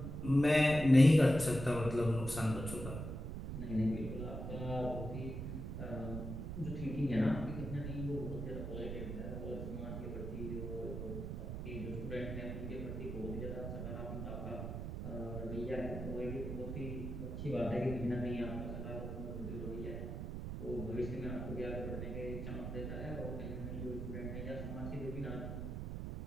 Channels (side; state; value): right; noise; rumble, 5 dB below the sound